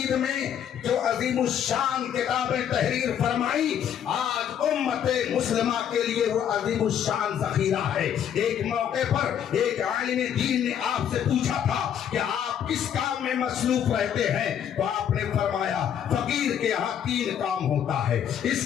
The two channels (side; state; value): right; quieter; 9.2 dB